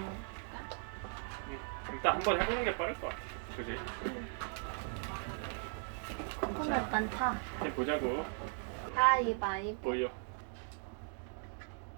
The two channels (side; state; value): left; silent; 52 dB below the other